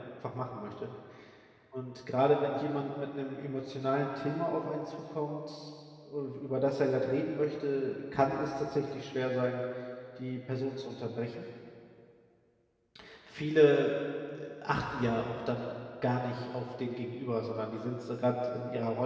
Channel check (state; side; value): identical; both; correlation 1.00